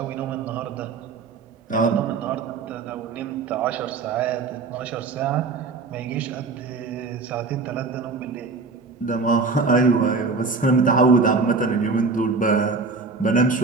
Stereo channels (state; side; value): quieter; left; 4.2 dB